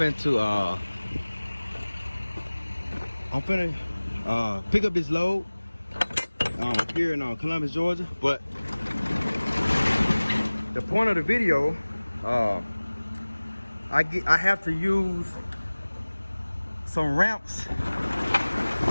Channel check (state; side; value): inverted; both; correlation -1.00